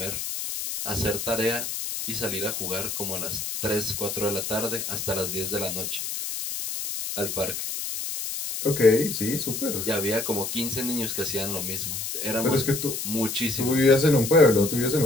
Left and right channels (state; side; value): noise; left; hiss, 4 dB below the sound